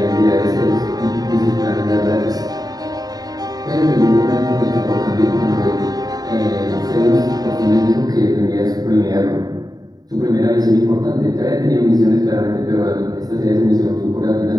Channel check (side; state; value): left; late; 0.18 ms